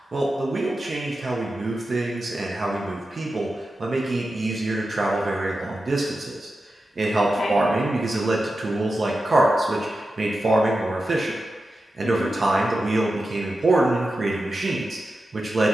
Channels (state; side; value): normal; both; correlation 0.91